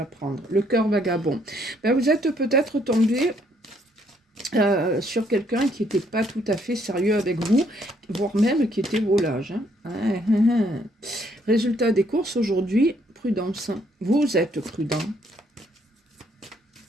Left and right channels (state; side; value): normal; both; correlation 0.69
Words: prendre. Le cœur vagabond. Ben, vous êtes peut-être tombé sur quelqu'un qui n'était pas tout à fait sérieux avec vous, voire même qui était volage. Hein. Résultat des courses aujourd'hui, prudence. Vous êtes prudent.